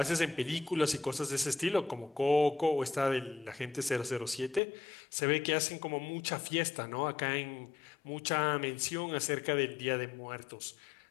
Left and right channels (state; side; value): drops out; right; at 4.6 s